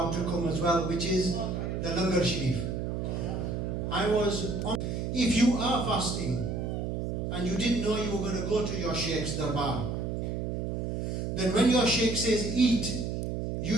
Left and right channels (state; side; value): noise; right; hum, 2 dB below the sound